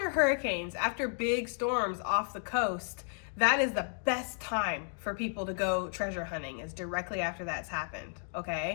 hurricanes, after big storms off the coast, that is the best time for people to go treasure hunting, is directly after that's happened,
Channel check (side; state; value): right; silent; 56 dB below the other